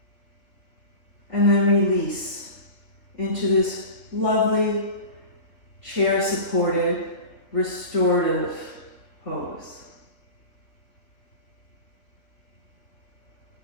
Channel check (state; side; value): late; right; 3.3 ms